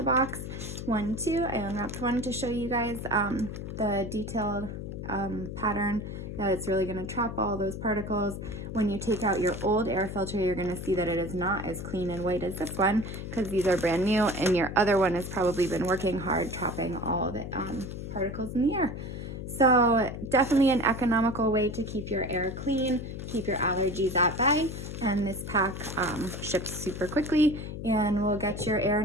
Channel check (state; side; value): noise; left; hum, 7 dB below the sound